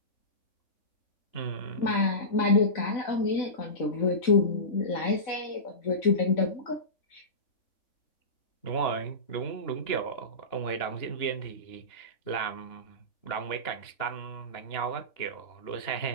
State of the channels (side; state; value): right; late; 3.5 ms